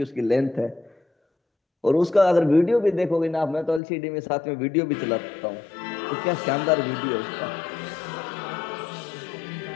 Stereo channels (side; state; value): right; drops out; at 3.8 s